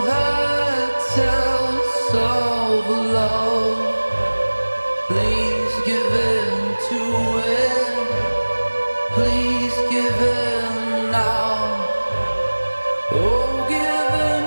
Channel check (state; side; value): inverted; both; correlation -1.00